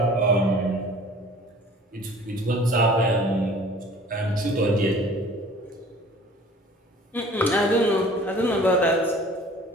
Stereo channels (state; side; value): normal; both; correlation 0.48